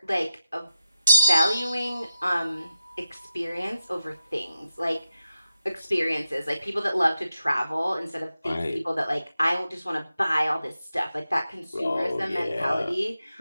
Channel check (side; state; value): both; inverted; correlation -0.91